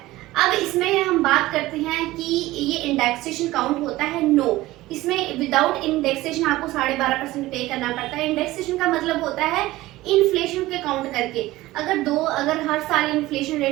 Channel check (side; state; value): left; quieter; 17.7 dB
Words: अब इसमें हम बात करते हैं कि ये इंडेक्सेशन काउंट होता है, नो, इसमें विदाउट इंडेक्सेशन आपको 12.5% पे करना पड़ता है। इंडेक्सेशन का मतलब होता है इन्फ्लेशन के काउंट करके, अगर हर साल इन्फ्लेशन